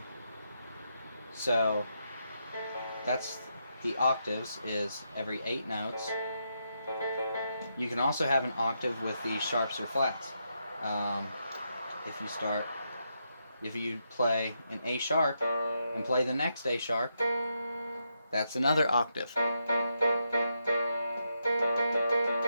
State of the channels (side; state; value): both; inverted; correlation -0.82